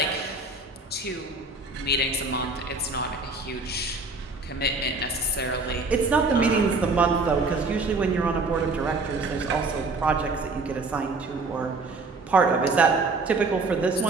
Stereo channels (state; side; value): quieter; left; 3.5 dB